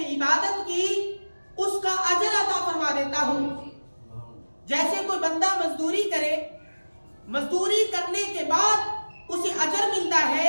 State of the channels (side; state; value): both; inverted; correlation -1.00